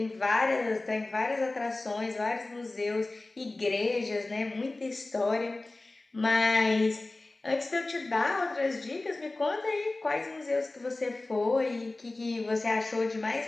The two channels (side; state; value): right; quieter; 3.0 dB